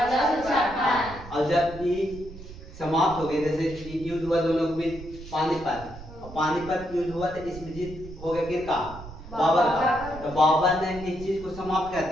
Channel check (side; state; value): right; noise; rumble, 15 dB below the sound